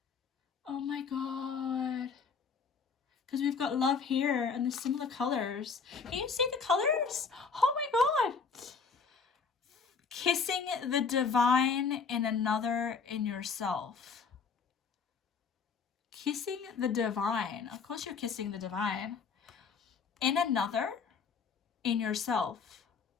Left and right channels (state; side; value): quieter; right; 5.5 dB